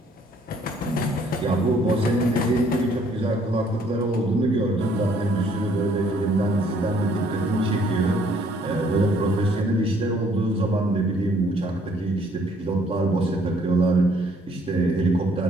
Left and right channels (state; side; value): normal; both; correlation 0.63